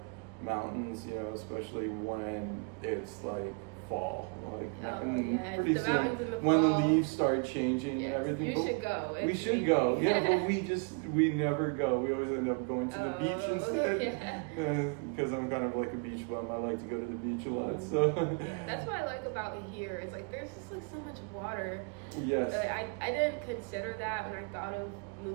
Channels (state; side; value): quieter; left; 35.3 dB